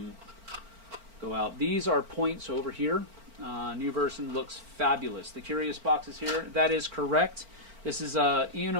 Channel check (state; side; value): late; left; 4.4 ms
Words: out. These are points over here. New version looks fabulous. The curious box is here. That is correct. This is Ian